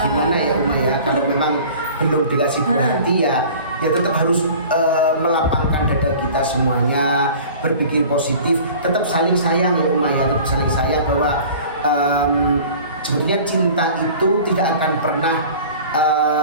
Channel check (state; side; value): inverted; both; correlation -0.43